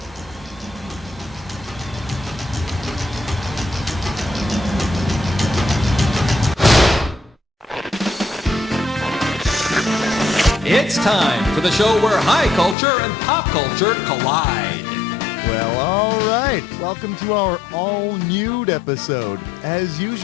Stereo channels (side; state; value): right; drops out; at 12.8 s